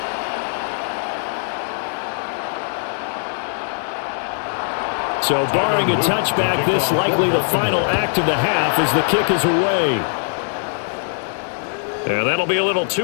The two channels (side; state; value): right; silent; digital silence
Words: So barring a touchback, this likely the final act of the half as the kick is away. And that'll be a little